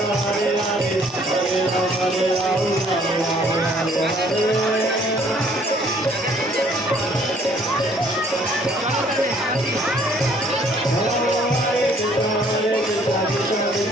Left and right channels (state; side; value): normal; both; correlation 0.61